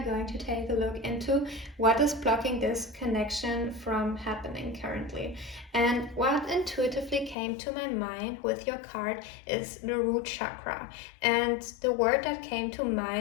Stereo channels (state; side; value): drops out; right; at 7.4 s